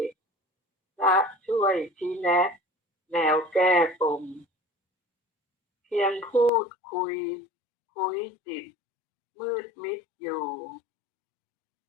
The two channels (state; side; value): drops out; right; at 6.5 s